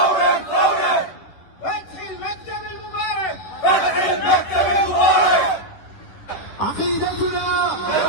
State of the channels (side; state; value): right; late; 10 ms